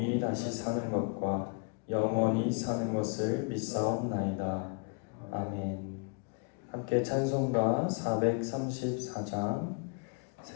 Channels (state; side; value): quieter; right; 36.2 dB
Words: 다시 사는 것과 영원히 사는 것을 믿사옵나이다. 아멘. 함께 찬송가 434장,